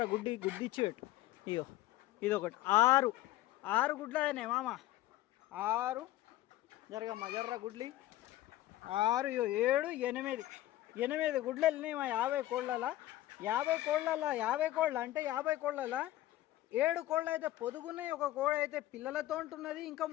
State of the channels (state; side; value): quieter; right; 15.1 dB